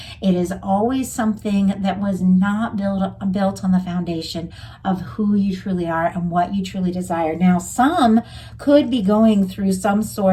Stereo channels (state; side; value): identical; both; correlation 1.00